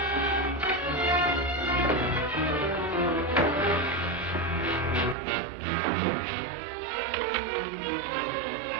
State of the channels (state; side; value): drops out; left; at 5.2 s